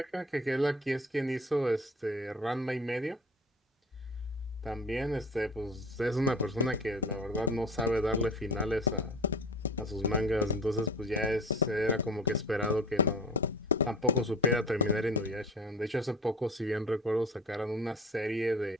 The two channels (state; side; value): normal; both; correlation 0.38